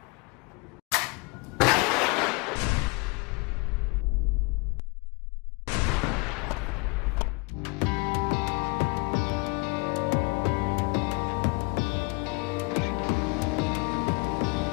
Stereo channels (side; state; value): right; quieter; 28.4 dB